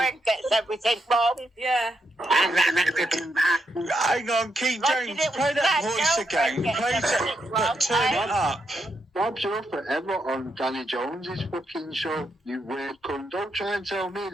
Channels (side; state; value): both; normal; correlation 0.81